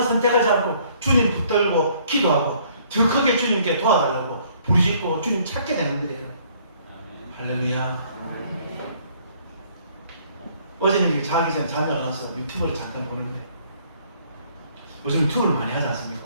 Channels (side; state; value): both; inverted; correlation -0.62